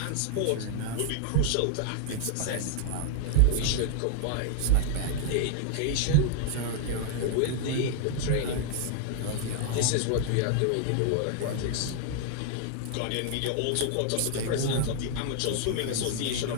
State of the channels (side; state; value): both; different; correlation -0.01